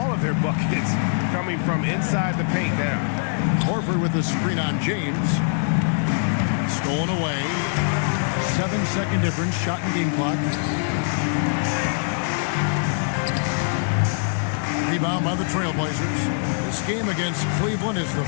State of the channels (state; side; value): silent; right; digital silence